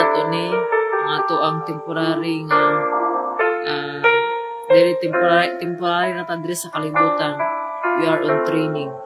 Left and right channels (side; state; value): both; identical; correlation 1.00